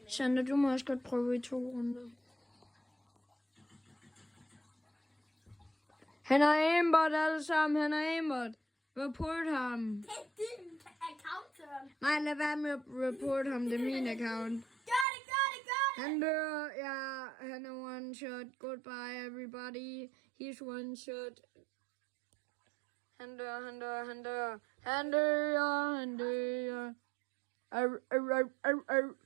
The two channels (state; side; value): drops out; left; at 15.1 s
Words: med? Sander, du må også godt prøve i 2 runder. Han er aimbot alle sammen. Han er aimbot. Report ham. Det er din account, Søren. Nej, lad være med at report ham. Det er min account. Gør det! Han dør. Ja, han er one shot. Goodbye, everybody. He's one shot. Han dør. Yep.